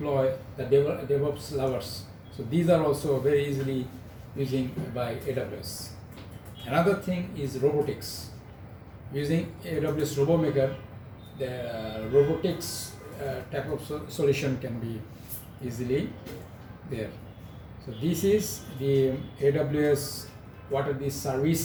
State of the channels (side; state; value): both; identical; correlation 1.00